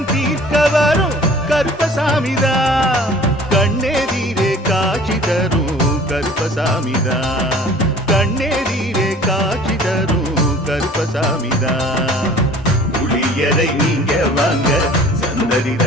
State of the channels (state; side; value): normal; both; correlation 0.48